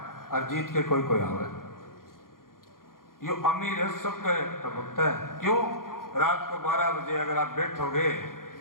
और जीत के कोई आवे। यो अमीर है सबके टपकता है। क्यों? रात को 12 बजे अगर आप बैठोगे,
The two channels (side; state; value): right; late; 0.91 ms